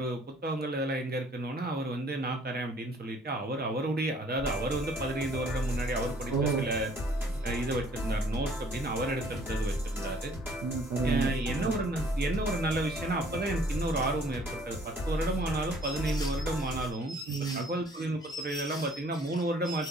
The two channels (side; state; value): both; normal; correlation 0.58